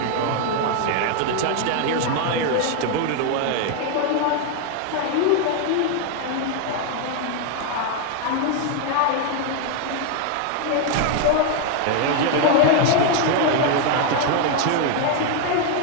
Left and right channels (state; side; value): different; both; correlation 0.01